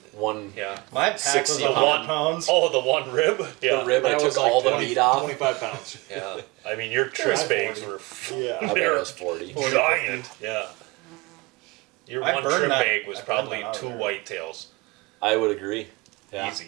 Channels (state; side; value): quieter; left; 24.6 dB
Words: one Yeah. My pack was 60 100 pound. pounds. Oh, the one rib. Yeah. the rib, I That took was like all the 20 meat off. 25 pounds. Yeah. I mean, your tris High bags 40. were Yeah. I bet it was 40. giant. Yeah. Your I one burned trim that- bag was I burned probably that out of 2 there. whitetails. I would agree. Yeah.